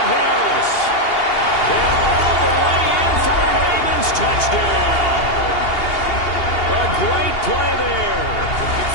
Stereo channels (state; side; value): late; right; 2.8 ms